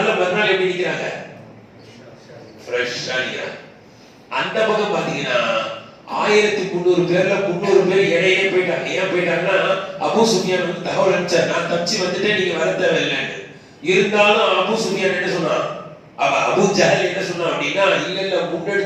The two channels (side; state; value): both; identical; correlation 1.00